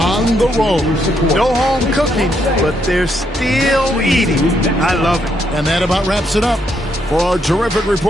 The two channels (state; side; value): normal; both; correlation 0.76